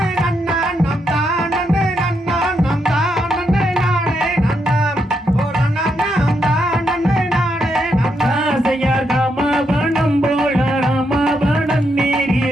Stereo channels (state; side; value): normal; both; correlation 0.80